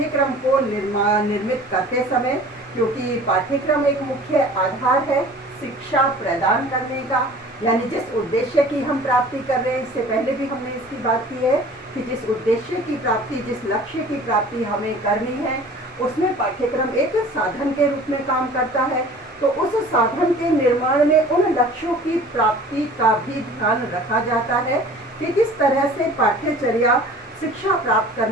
को निर्मित करते समय, क्योंकि पाठ्यक्रम एक मुख्य आधार है शिक्षा प्रदान करने का। यानी जिस उद्देश्य की हम प्राप्ति कर रहे हैं, इससे पहले भी हमने इसकी बात की है कि जिस उद्देश्य की प्राप्ति, जिस लक्ष्य की प्राप्ति हमें करनी है, उसमें पाठ्यक्रम एक साधन के रूप में काम करता है। तो उस साधन के निर्माण में उन लक्ष्यों की प्राप्ति का भी ध्यान रखा जाता है कि किस तरह से पाठ्यचर्या शिक्षा प्राप्त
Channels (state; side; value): normal; both; correlation 0.45